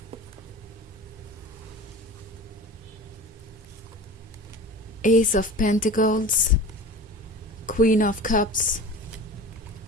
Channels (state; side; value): normal; both; correlation 0.35